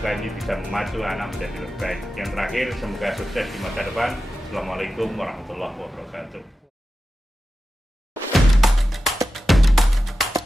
ini bisa memacu anak menjadi lebih baik. Yang terakhir, semoga sukses di masa depan. Assalamualaikum warahmatullahi wabarakatuh.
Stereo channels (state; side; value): normal; both; correlation 0.92